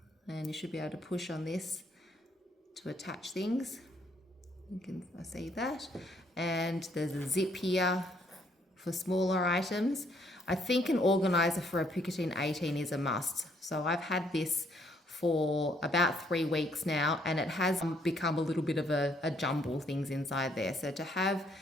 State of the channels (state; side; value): normal; both; correlation 0.68